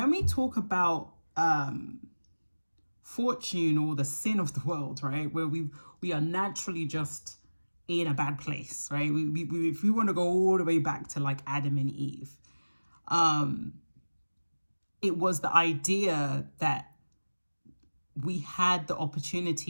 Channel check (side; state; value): both; inverted; correlation -1.00